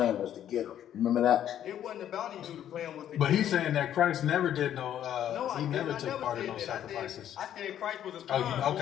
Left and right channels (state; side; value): quieter; right; 10.7 dB